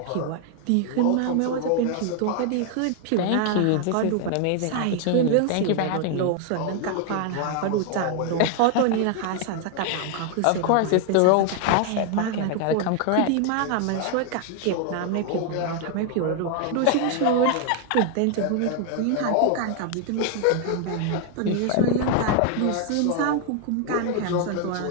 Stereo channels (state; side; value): different; both; correlation 0.00